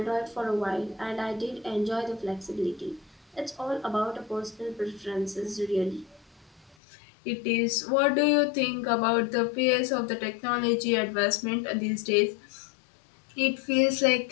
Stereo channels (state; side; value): drops out; right; at 6.8 s